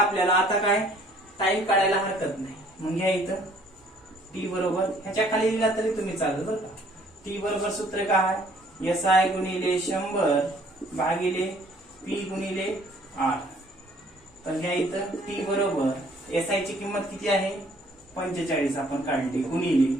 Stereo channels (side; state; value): both; normal; correlation 0.59